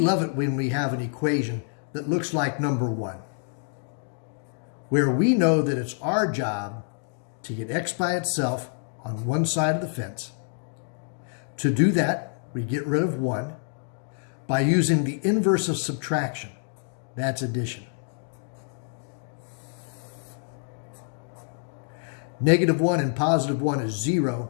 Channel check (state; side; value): silent; right; digital silence